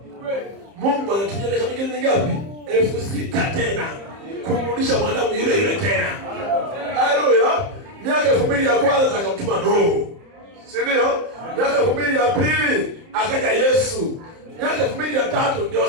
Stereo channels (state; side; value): late; left; 30 ms